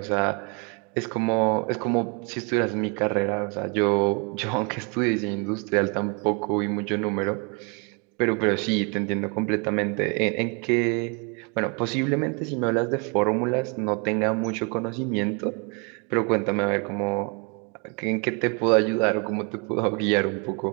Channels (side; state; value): left; quieter; 34.1 dB